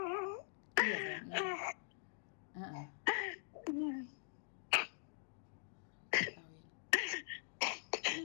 Iya sayang, iya. Heeh. Ketahuin.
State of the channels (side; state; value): right; silent; digital silence